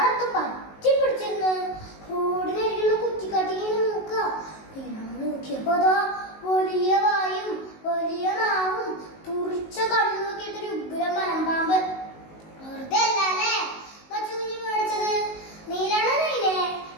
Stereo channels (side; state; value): right; late; 19 ms